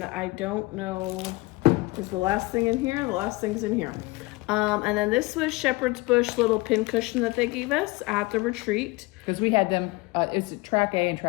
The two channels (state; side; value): quieter; right; 23.1 dB